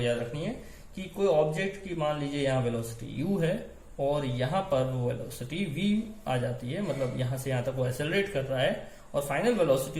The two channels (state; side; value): identical; both; correlation 1.00